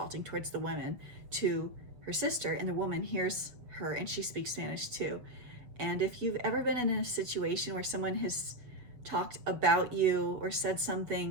towards the women to her sister, and the woman hears her and she speaks Spanish too. And if you've ever been in a situation where someone has talked about you or said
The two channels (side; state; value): left; late; 6.9 ms